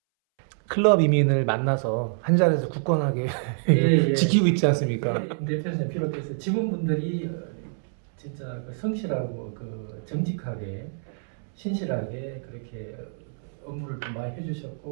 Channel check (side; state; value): left; silent; 61 dB below the other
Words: 클럽 이민을 만나서 한 자리에서 굳건하게 예. 지키고 있지 않습니까? 대표님 비롯해서 직원분들이 진짜 그 성실하고 그 정직하게 신실하게 그렇게 업무를 좀 많이